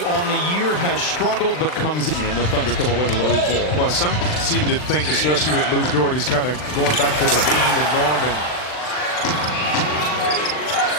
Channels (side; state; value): right; late; 39 ms